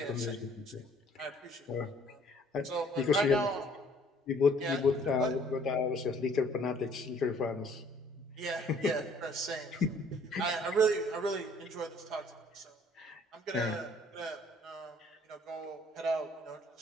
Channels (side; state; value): both; normal; correlation 0.58